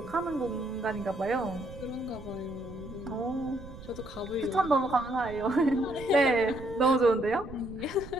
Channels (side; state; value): right; noise; rumble, 15 dB below the sound